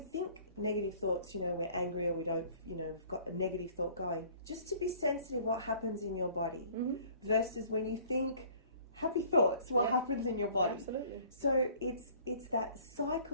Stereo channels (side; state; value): both; inverted; correlation -0.53